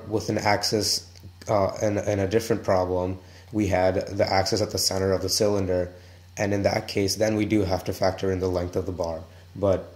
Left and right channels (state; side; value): identical; both; correlation 1.00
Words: with an axis in a different problem, we had the axis at the center of the cylinder, and in that case, then we do have to factor in the length of the bar. But